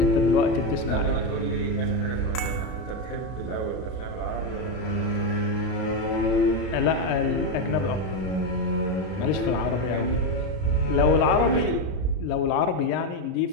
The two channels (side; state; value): right; late; 32 ms